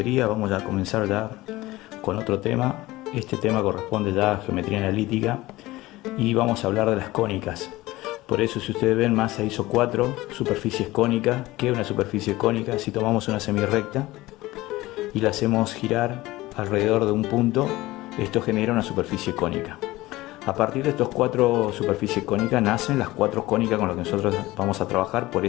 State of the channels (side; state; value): right; quieter; 18.6 dB